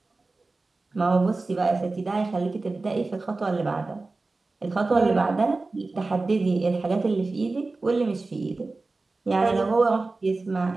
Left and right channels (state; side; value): quieter; left; 3.5 dB